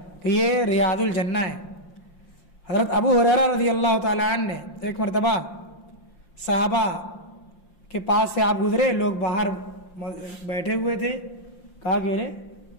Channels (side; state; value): right; late; 5.7 ms